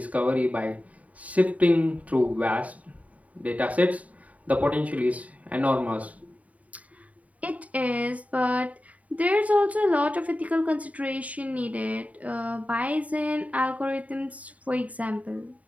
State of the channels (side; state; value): left; late; 0.069 ms